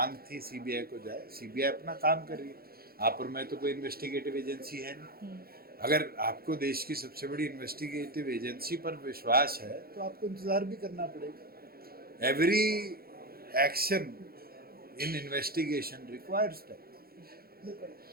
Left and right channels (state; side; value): late; left; 0.44 ms